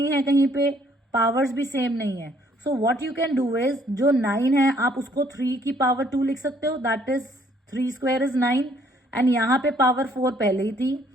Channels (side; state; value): both; normal; correlation 0.64